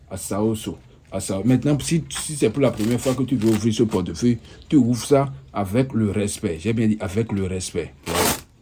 Asaoso. Asaoso. Maintenant, si c'est pour la première fois que tu veux ouvrir ce portefeuille, tu ouvres ça avec le respect. J'ai bien dit avec le respect. Voilà.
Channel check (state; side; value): identical; both; correlation 1.00